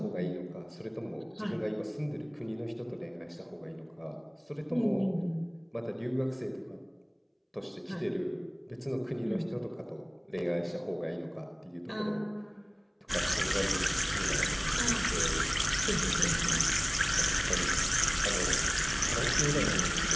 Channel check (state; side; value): identical; both; correlation 1.00